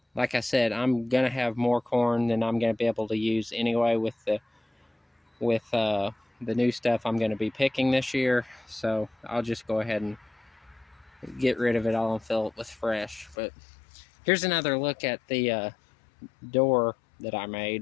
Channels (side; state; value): right; drops out; at 13.4 s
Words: like I said, I'm gonna have more corn than I'm gonna be able to use anyway with the new stuff I'm gonna be picking this year. So I'll just go ahead and get rid of it all and fill it with fresh. But here's another look at the door that I